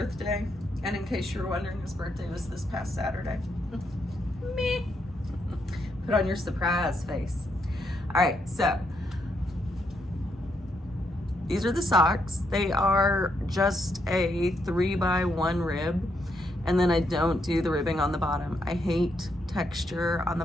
and in case you were wondering, his birthday was this past Saturday. Me. Put on your surprise face. All right, so these are the socks. They are just a 3x1 rib, and then I don't do the ribbing on the bottom. I hate texture on the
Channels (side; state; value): both; normal; correlation 0.78